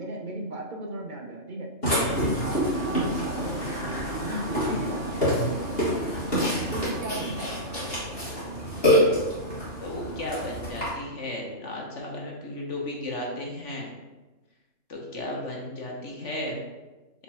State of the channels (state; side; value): late; right; 2.8 ms